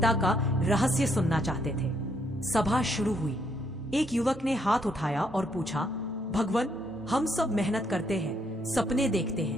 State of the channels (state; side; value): normal; both; correlation 0.73